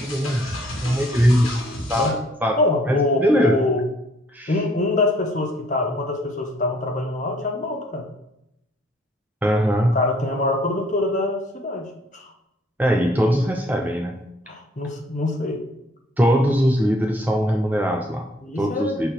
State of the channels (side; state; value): both; normal; correlation 0.62